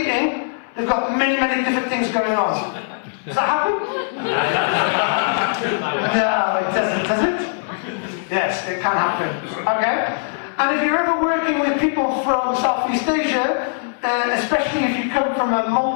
they've got many, many different things going on. Does that happen? No, it doesn't, does it? Yes, it can happen. Okay? And if you're ever working with people from Southeast Asia, especially if you come from a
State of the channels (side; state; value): right; silent; digital silence